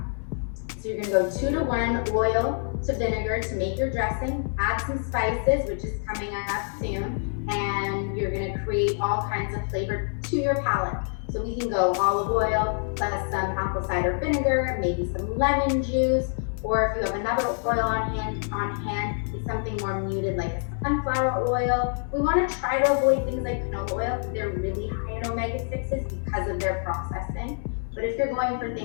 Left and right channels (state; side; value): silent; right; 61 dB below the other